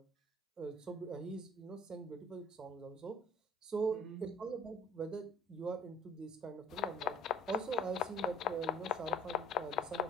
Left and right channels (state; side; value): normal; both; correlation 0.54